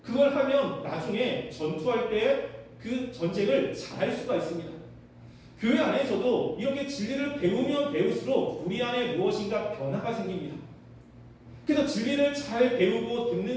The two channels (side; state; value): both; identical; correlation 1.00